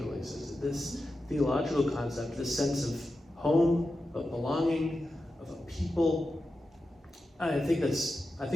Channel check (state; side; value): normal; both; correlation 0.91